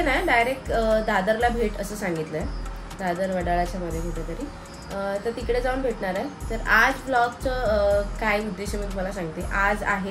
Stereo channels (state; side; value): identical; both; correlation 1.00